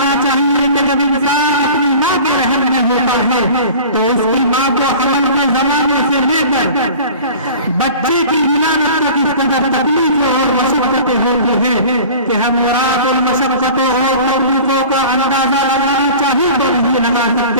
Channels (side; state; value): both; inverted; correlation -0.40